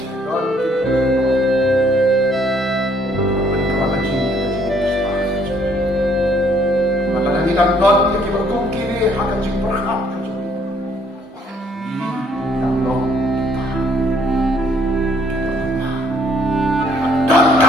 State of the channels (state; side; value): normal; both; correlation 0.64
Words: kita God yang kita kini akan berkat kecuali ya Allah kita